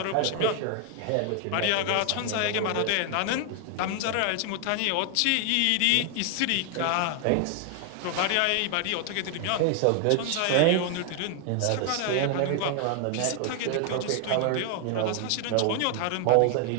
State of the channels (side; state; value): both; different; correlation 0.00